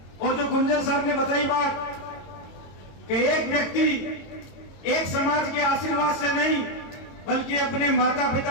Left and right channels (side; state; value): right; late; 22 ms